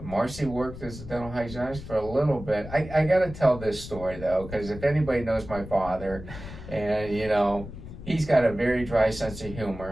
Marcy worked as a dental hygienist for a little bit. I got to tell this story, though, because if anybody knows my father, and, he's got a very dry sense of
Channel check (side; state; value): left; noise; rumble, 12 dB below the sound